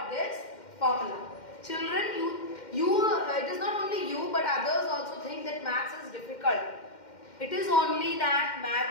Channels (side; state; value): right; late; 2.1 ms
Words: this formula. Children, it is not only you but others also think that maths is difficult. It is only that